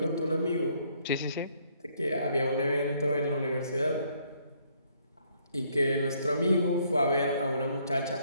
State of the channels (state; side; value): inverted; both; correlation -0.67